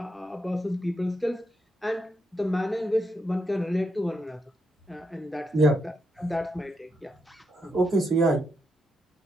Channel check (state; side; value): normal; both; correlation 0.81